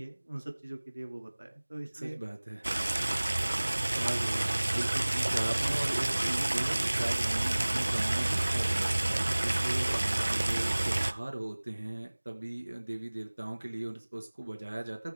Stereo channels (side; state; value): both; inverted; correlation -1.00